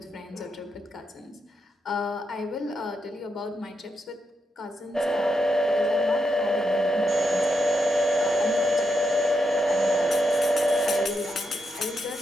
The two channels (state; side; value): normal; both; correlation 0.84